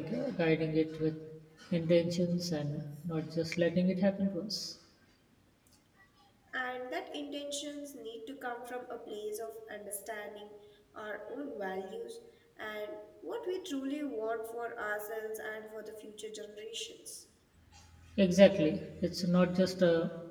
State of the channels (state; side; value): identical; both; correlation 1.00